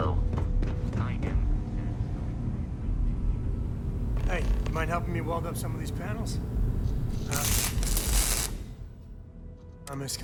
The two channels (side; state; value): both; identical; correlation 1.00